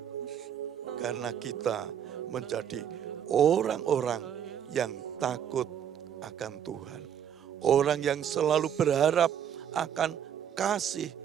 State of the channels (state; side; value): quieter; left; 9.0 dB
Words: Karena kita menjadi orang-orang yang takut akan Tuhan. Orang yang selalu berharap akan kasih